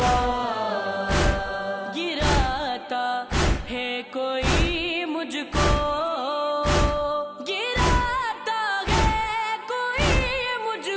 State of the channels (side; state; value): both; identical; correlation 1.00